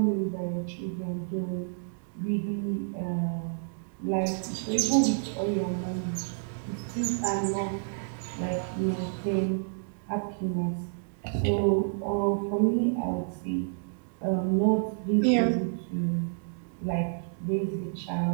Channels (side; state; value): left; silent; digital silence